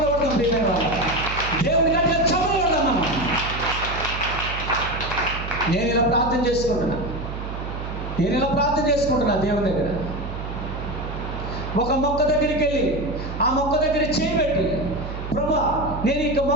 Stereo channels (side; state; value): right; noise; hum, 7 dB below the sound